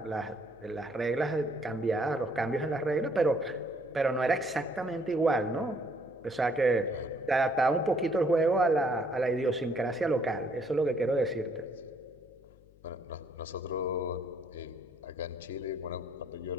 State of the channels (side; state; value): left; noise; hum, 26 dB below the sound